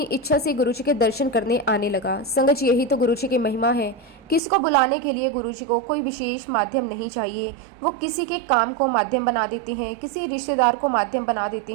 इच्छा से गुरुजी के दर्शन करने आने लगा। संगत जी, यही तो गुरुजी की महिमा है। किसी को बुलाने के लिए गुरुजी को कोई विशेष माध्यम नहीं चाहिए। वो किसी के काम को माध्यम बना देते हैं, किसी रिश्तेदार को माध्यम बना देते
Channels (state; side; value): drops out; left; at 4.4 s